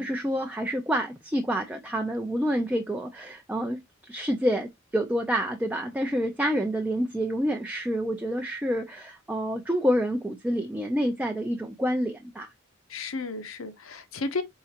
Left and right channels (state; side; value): normal; both; correlation 0.81